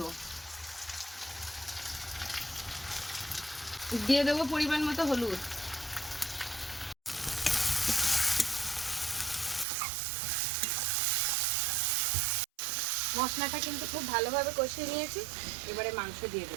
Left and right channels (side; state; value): left; drops out; at 9.7 s